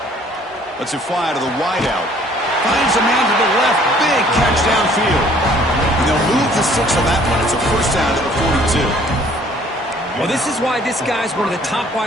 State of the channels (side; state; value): both; normal; correlation 0.57